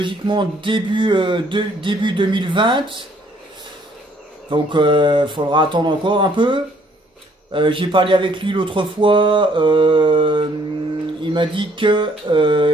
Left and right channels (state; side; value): normal; both; correlation 0.63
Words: début 2020. Donc il faudra attendre encore un peu. J'ai parlé avec lui l'autre fois. Il m'a dit que